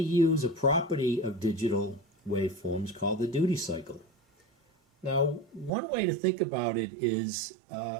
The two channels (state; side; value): drops out; left; at 5.7 s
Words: use a property of digital waveforms called the duty cycle. Now, one way to think about it is